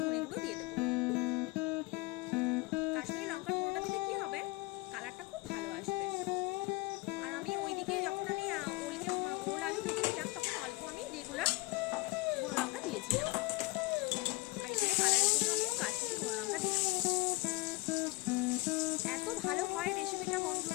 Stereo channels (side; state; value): right; quieter; 23.8 dB